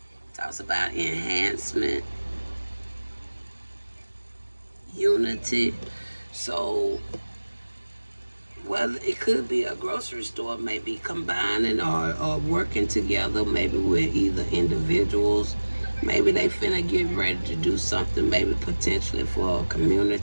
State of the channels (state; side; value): inverted; both; correlation -1.00